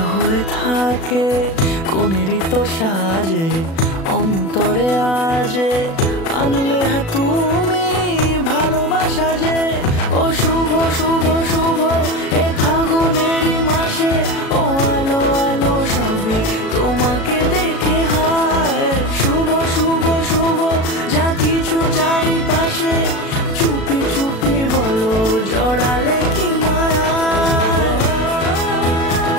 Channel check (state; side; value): late; right; 36 ms